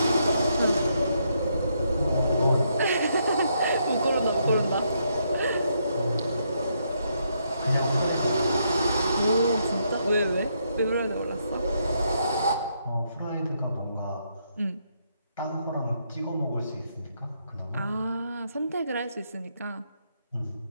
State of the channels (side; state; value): both; inverted; correlation -0.76